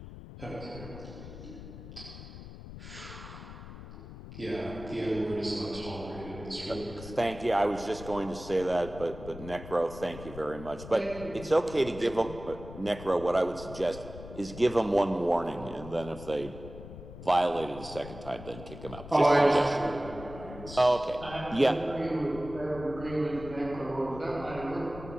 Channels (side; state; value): left; noise; rumble, 13 dB below the sound